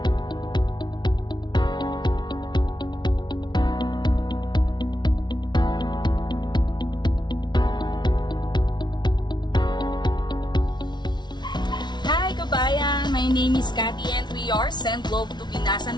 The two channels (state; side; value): late; right; 0.21 ms